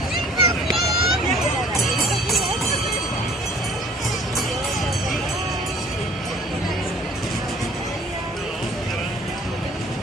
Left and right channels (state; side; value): normal; both; correlation 0.51